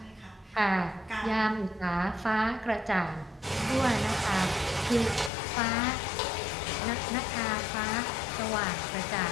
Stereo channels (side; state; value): right; drops out; at 5.3 s